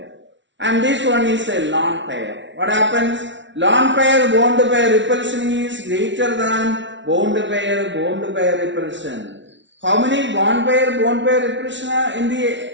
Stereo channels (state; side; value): late; left; 0.54 ms